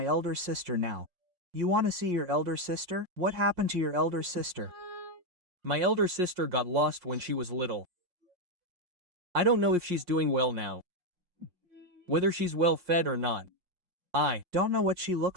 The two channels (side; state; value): left; late; 5.6 ms